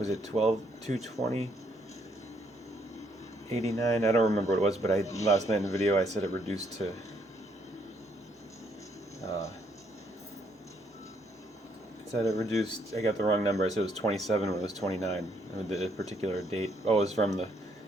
it 12/2/20? 89? I don't remember what it was, but last night in the video I said it reduced to I got the wrong number. I said it was 27 when it was 29. The particular date. Oh, it was from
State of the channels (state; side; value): normal; both; correlation 0.70